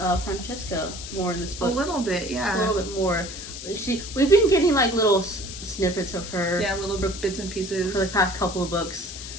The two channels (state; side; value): noise; left; hiss, 10 dB below the sound